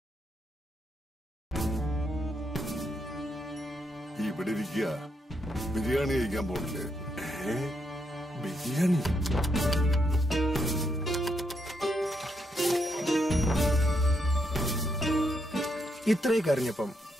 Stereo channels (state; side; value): normal; both; correlation 0.79